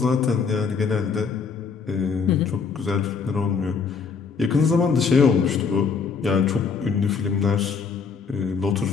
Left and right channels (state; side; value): quieter; right; 5.5 dB